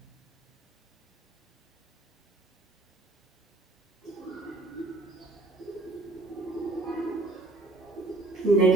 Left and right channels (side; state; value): left; quieter; 3.0 dB